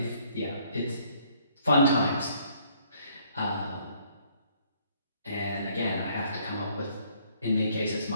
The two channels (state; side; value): inverted; both; correlation -0.64